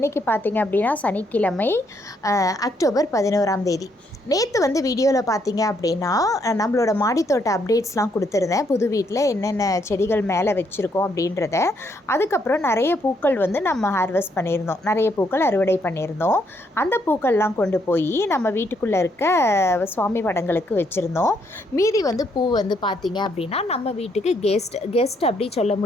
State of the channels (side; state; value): both; normal; correlation 0.73